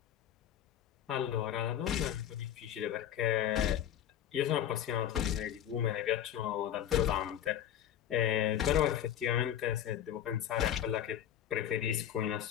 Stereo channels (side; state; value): right; quieter; 10.6 dB